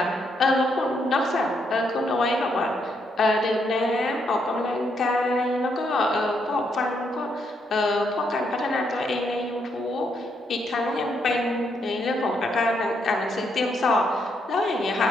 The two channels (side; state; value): both; normal; correlation 0.77